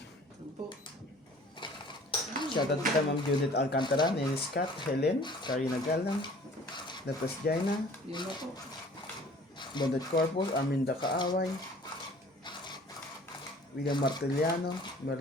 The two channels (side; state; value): both; normal; correlation 0.50